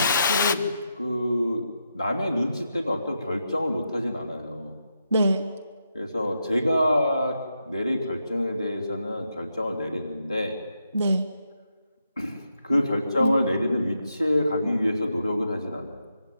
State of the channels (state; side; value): inverted; both; correlation -0.84